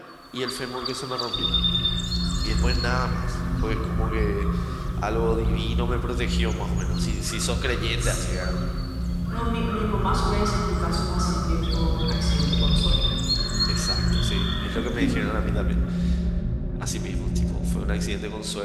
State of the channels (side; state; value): both; identical; correlation 1.00